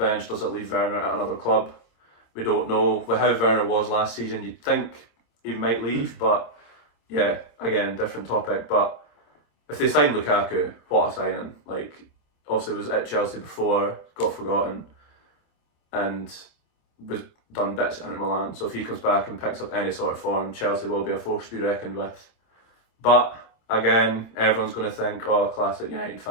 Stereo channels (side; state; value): right; late; 26 ms